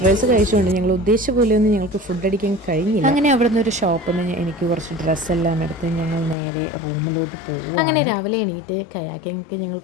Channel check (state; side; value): drops out; right; at 6.4 s